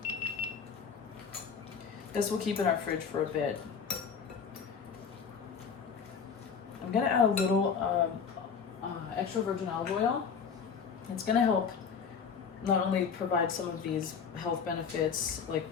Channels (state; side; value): quieter; right; 6.3 dB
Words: this will keep in our fridge for a bit. I'm going to add a little extra virgin olive oil. It's going to help not only provide some of these health benefits like